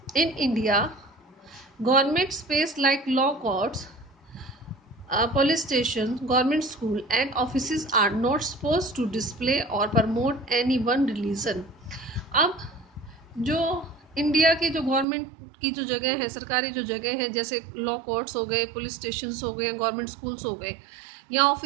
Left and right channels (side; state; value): left; drops out; at 15.1 s